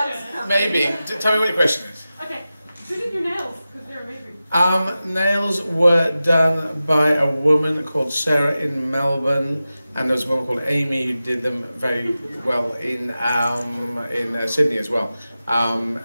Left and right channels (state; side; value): inverted; both; correlation -0.94